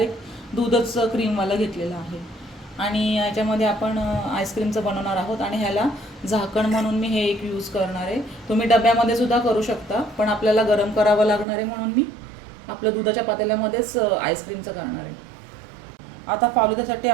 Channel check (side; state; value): left; drops out; at 11.5 s